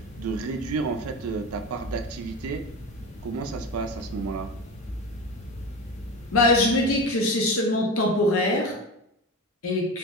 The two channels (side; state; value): both; normal; correlation 0.26